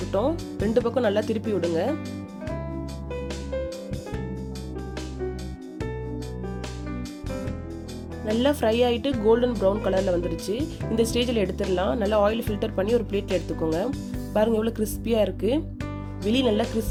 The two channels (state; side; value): identical; both; correlation 1.00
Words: ரெண்டு பக்கம் நல்லா திருப்பி விடுங்க. நல்லா ஃப்ரை ஆகிட்டு கோல்டன் ப்ரௌன் கலரில் வந்துருச்சு. இந்த ஸ்டேஜில் எடுத்துடலாம். நல்லா ஆயில் ஃபில்டர் பண்ணி ஒரு பிளேட்டில் எடுத்துக்கோங்க. பாருங்கள் எவ்வளோ கிறிஸ்பியாக இருக்குது. வெளியே நல்லா